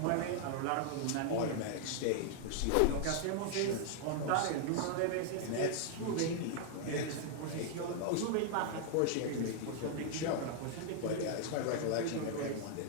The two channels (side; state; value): both; different; correlation 0.00